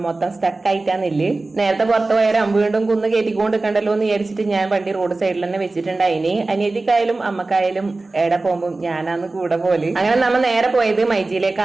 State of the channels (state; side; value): quieter; left; 3.3 dB